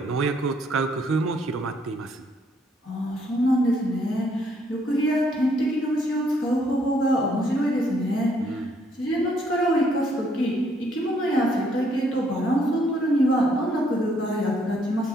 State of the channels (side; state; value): both; normal; correlation 0.69